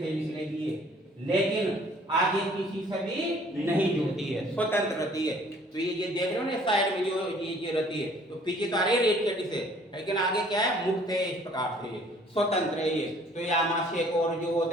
निकलेगी, लेकिन आगे किसी से भी नहीं जुड़ती है, स्वतंत्र रहती है। तो ये देख रहे हो ना साइड में जो ये रहती है, तो पीछे तो आ रही है रीढ़ की हड्डी से, लेकिन आगे क्या है? मुक्त है, इस प्रकार से स्वतंत्र है ये। तो ये आमाशय को और जो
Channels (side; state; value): both; normal; correlation 0.56